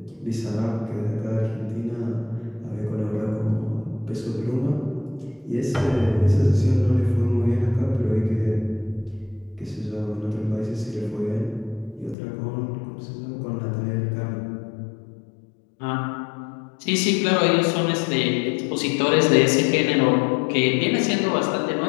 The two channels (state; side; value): drops out; right; at 12.2 s